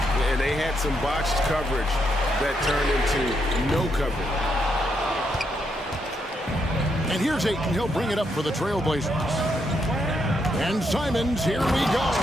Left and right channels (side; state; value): both; normal; correlation 0.78